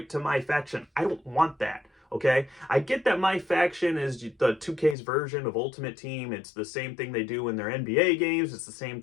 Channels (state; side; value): drops out; right; at 5.0 s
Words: to my faction. I don't want that. Okay, I get that my faction is the 2K's version of Ultimate Team. It's the same thing they do in their NBA games. It's the same